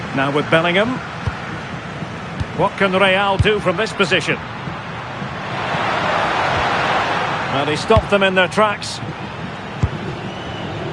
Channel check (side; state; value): both; identical; correlation 1.00